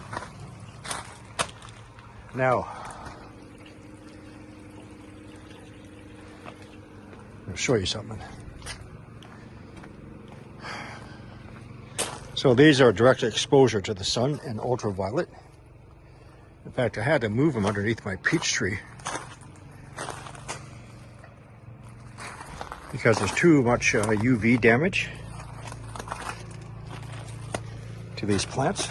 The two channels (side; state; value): both; identical; correlation 1.00